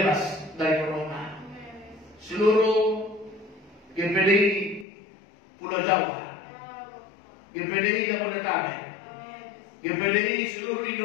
dari corona. Seluruh GPDI Pulau Jawa, GPDI Jabodetabek, GPDI seluruh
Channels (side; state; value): right; drops out; at 4.9 s